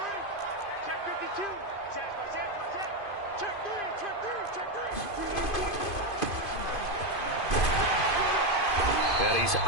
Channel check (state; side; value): late; right; 2.5 ms